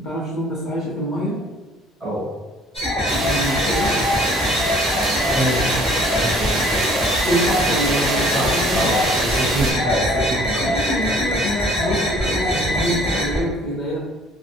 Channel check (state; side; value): normal; both; correlation 0.55